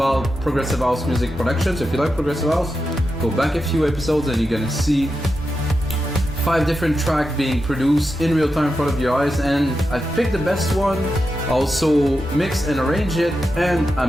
progressive house music production. So if you like progressive house, go back a few episodes and you're gonna see 5 different tracks being produced in real time in front of your eyes, and I picked the best one, also mixed and arranged it, and I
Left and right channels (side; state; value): both; normal; correlation 0.88